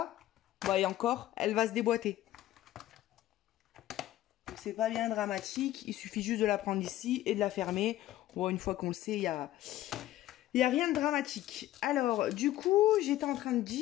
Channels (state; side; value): quieter; right; 14.4 dB